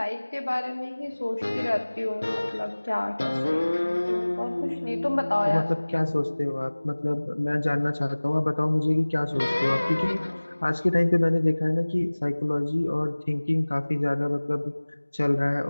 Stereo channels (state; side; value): inverted; both; correlation -1.00